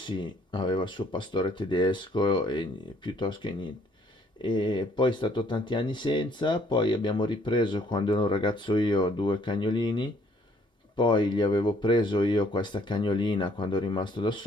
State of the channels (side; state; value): both; normal; correlation 0.64